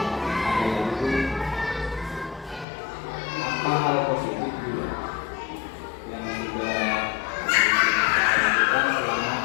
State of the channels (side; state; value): right; drops out; at 2.7 s